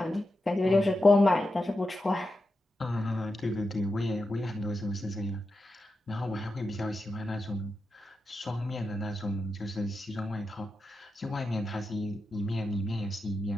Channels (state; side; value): normal; both; correlation 0.89